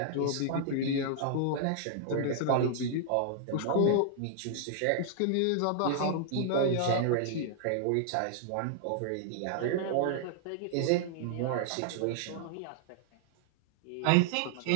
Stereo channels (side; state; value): both; different; correlation -0.01